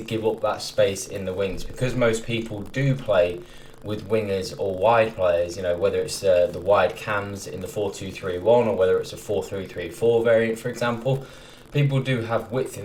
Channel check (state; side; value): identical; both; correlation 1.00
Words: up that space in the wings because most people do play with wingers or wide players, you know, whether it's the wide cams in the 4-2-3-1 or whether it's a 4-3-3-4 variant, for example. People do have width